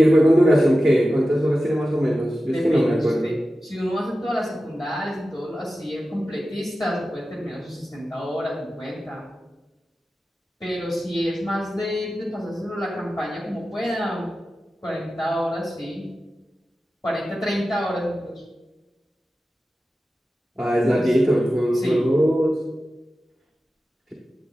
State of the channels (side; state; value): both; normal; correlation 0.93